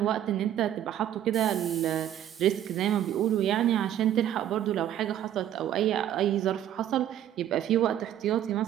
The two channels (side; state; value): left; quieter; 11.2 dB